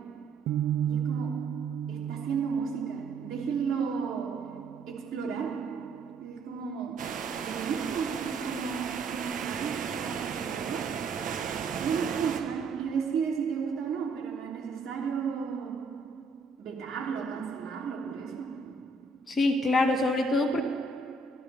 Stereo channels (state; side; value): quieter; left; 3.6 dB